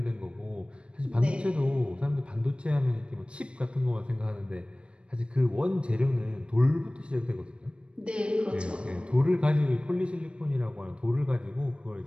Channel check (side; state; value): left; late; 0.058 ms